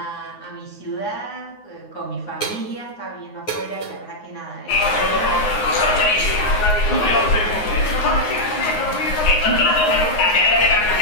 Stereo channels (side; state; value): right; late; 9.6 ms